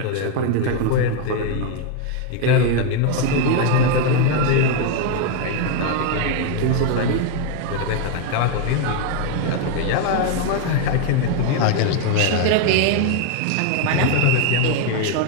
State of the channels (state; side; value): different; both; correlation 0.01